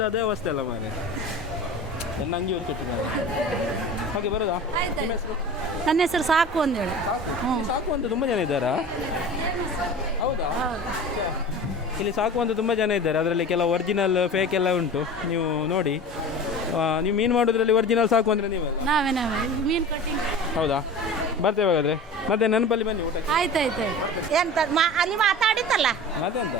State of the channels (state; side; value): normal; both; correlation 0.35